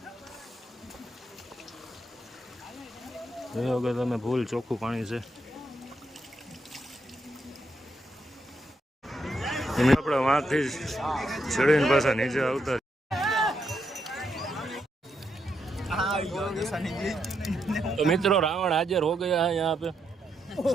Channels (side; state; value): both; normal; correlation 0.80